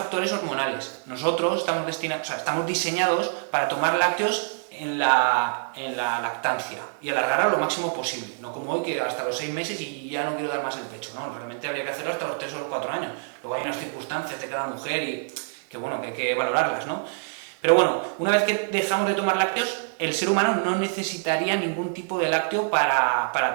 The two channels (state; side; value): silent; left; 61 dB below the other